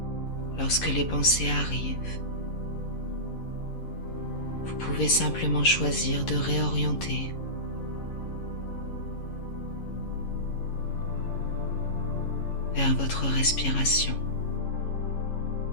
Lorsque les pensées arrivent, vous pouvez simplement choisir de réorienter vers votre respiration.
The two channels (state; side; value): late; right; 11 ms